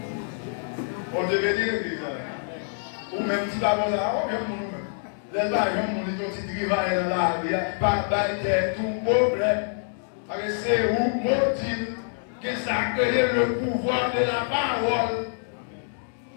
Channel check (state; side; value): silent; right; digital silence